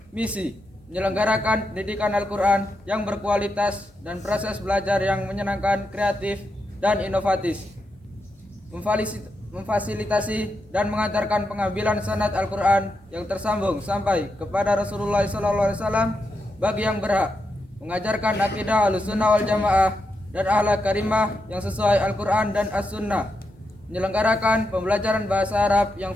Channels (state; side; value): normal; both; correlation 0.85